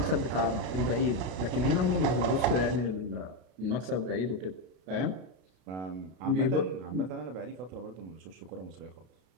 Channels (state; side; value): late; left; 32 ms